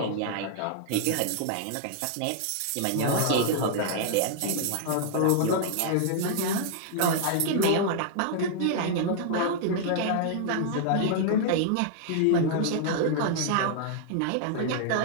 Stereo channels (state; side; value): different; both; correlation -0.01